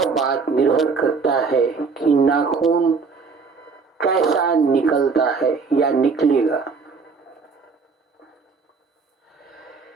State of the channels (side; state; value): left; quieter; 4.9 dB